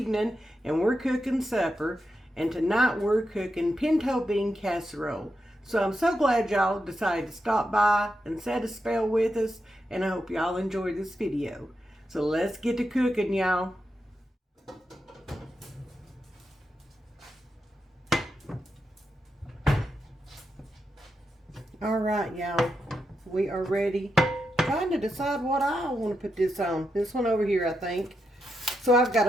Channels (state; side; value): normal; both; correlation 0.86